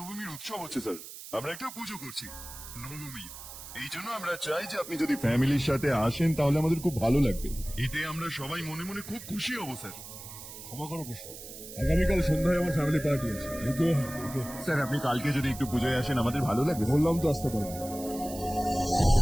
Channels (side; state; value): right; noise; hiss, 13 dB below the sound